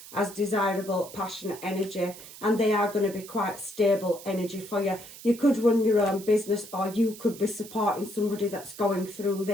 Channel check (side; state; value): right; noise; hiss, 16 dB below the sound